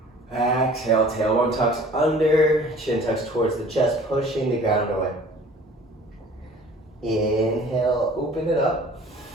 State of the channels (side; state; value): both; normal; correlation 0.48